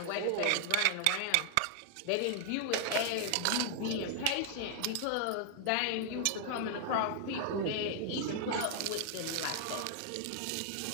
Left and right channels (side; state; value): both; different; correlation 0.00